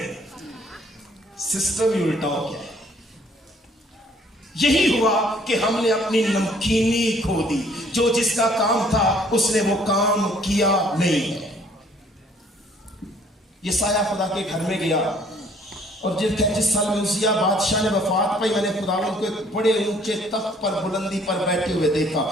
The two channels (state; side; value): normal; both; correlation 0.60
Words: सिस्टम ही उल्टा हो गया। यही हुआ कि हमने अपनी नमकीनी खो दी, जो जिसका काम था उसने वो काम किया नहीं है। यसाया खुदा के घर में गया, और जिस साल में उसिया बादशाह ने वफात पाई, मैंने खुदावंद को एक बड़े ऊंचे तख्त पर बुलंदी पर बैठे हुए देखा।